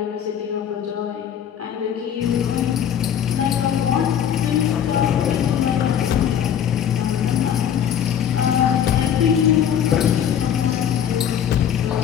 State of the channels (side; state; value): right; quieter; 9.1 dB